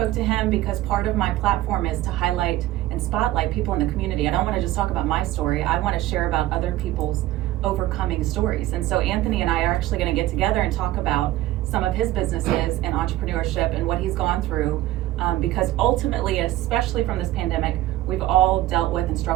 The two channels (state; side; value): quieter; left; 15.4 dB